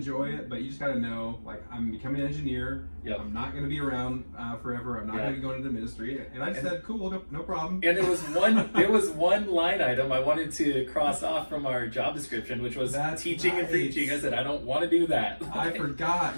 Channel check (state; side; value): inverted; both; correlation -1.00